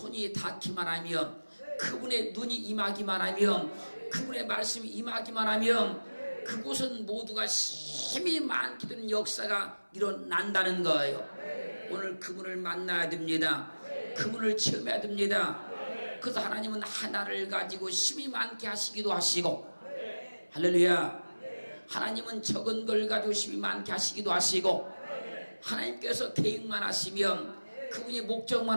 닿기만 하면, 그분의 눈이 임하기만 하면, 그분의 말씀이 임하기만 하면 그곳은 모두가 힘이 많게 되는 역사가 일어난다는 거예요. 오늘 그분을 만나야 됩니다. 그분을 체험해야 됩니다. 그래서 하나님은 하나를 가지고 힘이 많게 하시기도 하시고, 할렐루야. 하나님은 적은 걸 가지고 힘이 많게 하시기도 하시고, 하나님께서 계획만 하시면, 그분이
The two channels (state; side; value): inverted; both; correlation -1.00